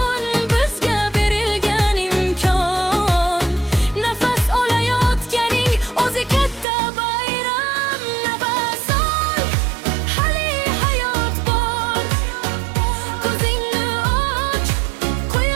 bizga berilgan imkon, nafas olayotganing o'zi katta bayram. Nafas ol, hali hayot bor. Ko'zingni och,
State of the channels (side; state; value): left; drops out; at 6.7 s